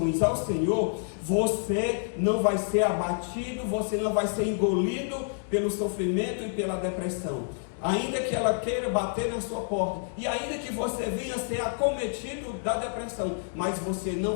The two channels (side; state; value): right; silent; digital silence